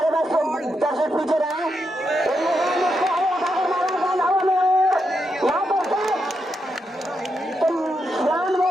बैट्समैन दर्शक पीछे रहे।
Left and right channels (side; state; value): both; normal; correlation 0.83